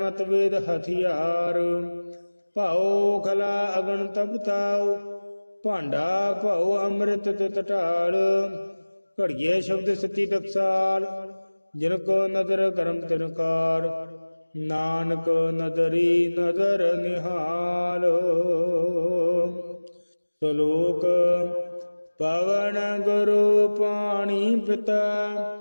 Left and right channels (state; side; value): inverted; both; correlation -1.00